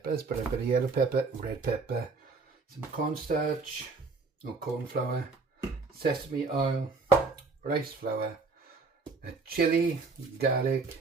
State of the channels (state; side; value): quieter; left; 4.2 dB